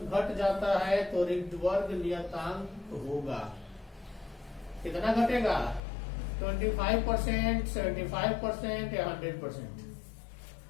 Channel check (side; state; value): right; drops out; at 5.8 s